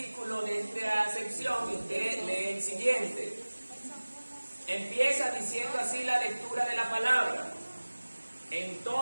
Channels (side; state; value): both; inverted; correlation -1.00